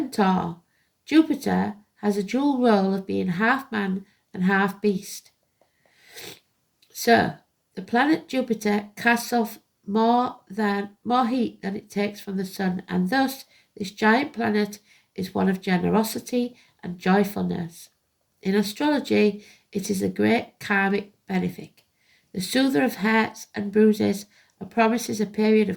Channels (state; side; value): identical; both; correlation 1.00